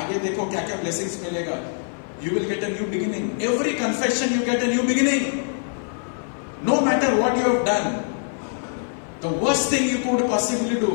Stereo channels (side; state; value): right; silent; 57 dB below the other